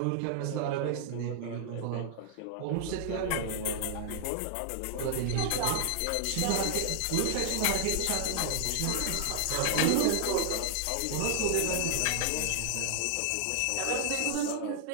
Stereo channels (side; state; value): both; different; correlation -0.01